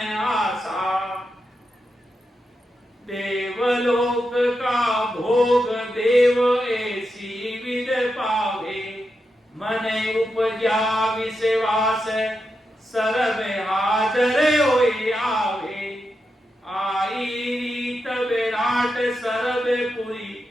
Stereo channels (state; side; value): normal; both; correlation 0.87